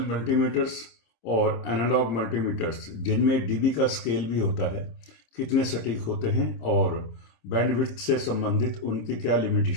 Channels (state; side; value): late; right; 26 ms